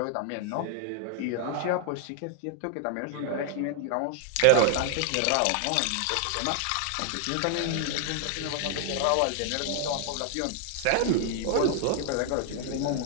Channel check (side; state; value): both; different; correlation 0.00